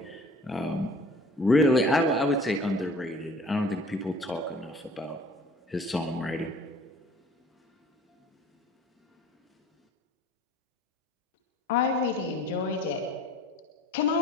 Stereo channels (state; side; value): normal; both; correlation 0.48